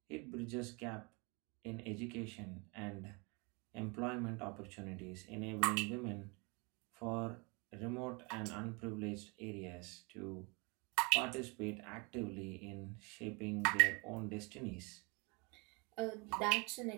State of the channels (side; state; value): left; quieter; 30.0 dB